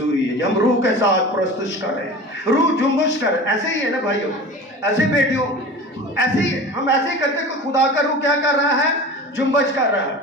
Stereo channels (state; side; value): normal; both; correlation 0.35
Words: है, हम रूह के साथ प्रस्तुत कर रहे हैं, रूह जुम्बश कर। ऐसे ही है ना भाइयों, ऐसे बेटियों, ऐसे ही हम ऐसे ही करते कि खुदा का रूह क्या कर रहा है? जुम्बश कर रहा है।